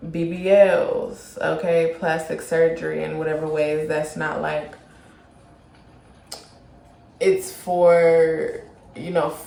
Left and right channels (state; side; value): identical; both; correlation 1.00